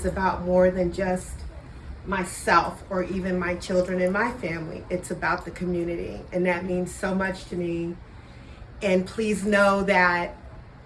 about more than just myself or even my children and my family. It's about the community, and that means so much to me. And please know that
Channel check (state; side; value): identical; both; correlation 1.00